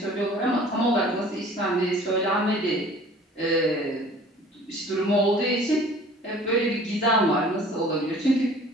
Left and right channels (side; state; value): both; normal; correlation 0.49